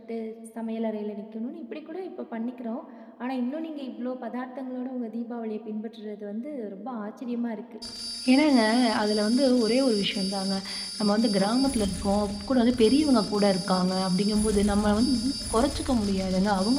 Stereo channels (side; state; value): both; identical; correlation 1.00